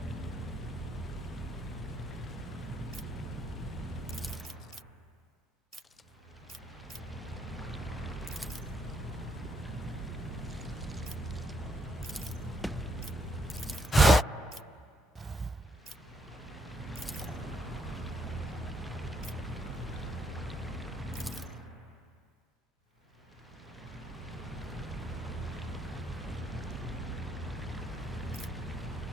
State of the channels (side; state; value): both; normal; correlation 0.74